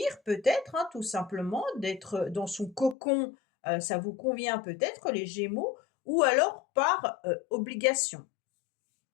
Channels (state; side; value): drops out; right; at 3.0 s